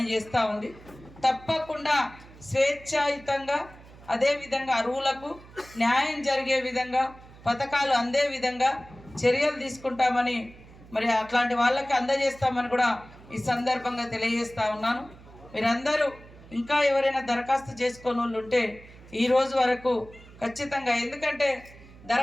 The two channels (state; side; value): noise; right; hum, 21 dB below the sound